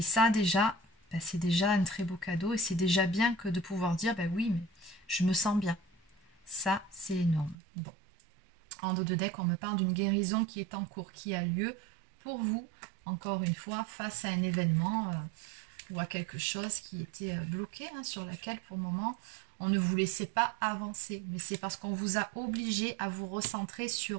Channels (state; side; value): drops out; left; at 7.6 s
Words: ça déjà, ben, c'est déjà un très beau cadeau, et c'est déjà bien que de pouvoir dire, ben oui, mais je me sens bien. Ça, c'est énorme. Bon. En dos de deck, on me parle d'une guérison qui est en cours, qui a lieu pour vous, encore une fois, face à un événement ou à quelque chose qui était bloqué, hein, sur laquelle pour le moment on ne vous laissait pas avancer. Mais c'est parce qu'on vous a obligé à vous recentrer